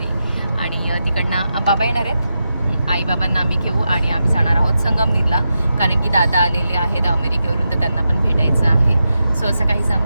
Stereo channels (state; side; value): inverted; both; correlation -0.88